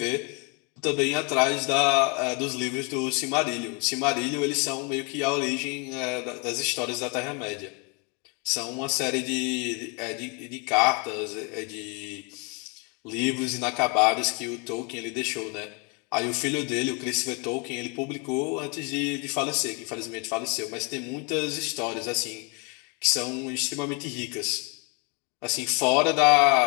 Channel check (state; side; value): quieter; right; 32.5 dB